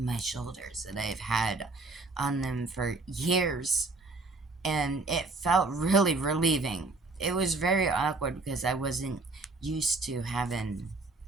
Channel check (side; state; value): left; quieter; 3.6 dB